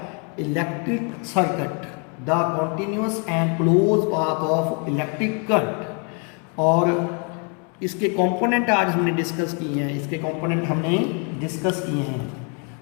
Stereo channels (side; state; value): right; quieter; 37.3 dB